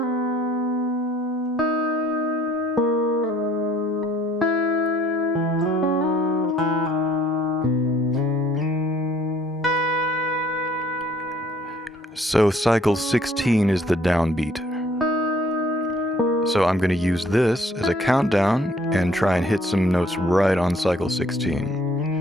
So cycle 16 is the downbeat. So I'm going to use this as a countdown and try and hit some notes right on cycle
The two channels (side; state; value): both; normal; correlation 0.60